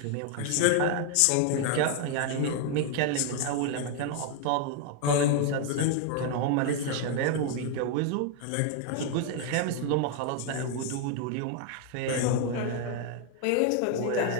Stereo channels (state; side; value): different; both; correlation 0.00